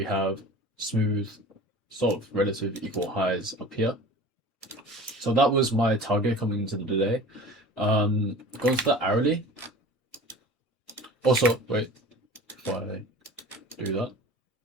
have smooth, sort of relative equal highs up here. So that was my target coming into the day. Going to the hourly. Also, wait, before I do that,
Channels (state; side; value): normal; both; correlation 0.39